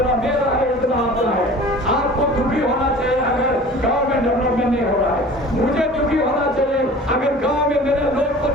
मेरा है उतना आपका है। आपको दुखी होना चाहिए अगर गांव में डेवलपमेंट नहीं हो रहा है, मुझे दुखी होना चाहिए अगर गांव में मेरे लोग को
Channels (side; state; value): both; normal; correlation 0.43